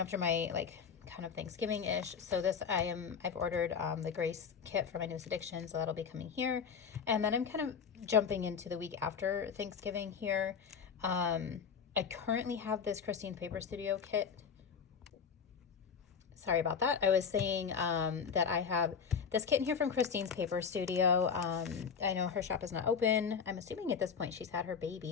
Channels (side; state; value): right; quieter; 6.5 dB